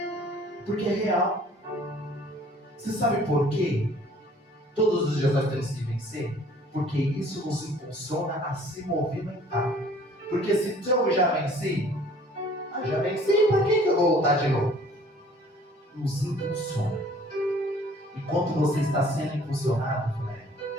Porque é real. Você sabe por quê? Todos os dias nós temos que vencer? Porque isso nos impulsiona a se movimentar. Porque se eu já venci, para que eu vou voltar de novo? Nos impulsiona. Enquanto você está sendo impulsionado,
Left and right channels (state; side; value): normal; both; correlation 0.54